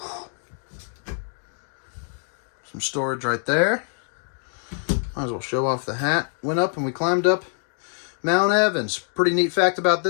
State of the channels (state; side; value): silent; right; 57 dB below the other